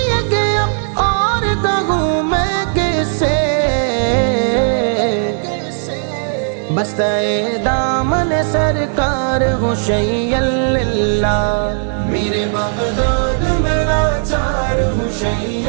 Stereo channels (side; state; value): left; silent; digital silence